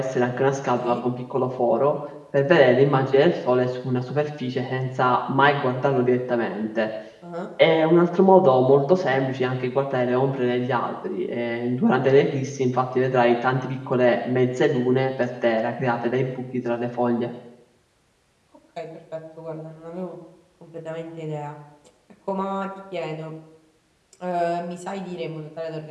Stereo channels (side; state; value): both; identical; correlation 1.00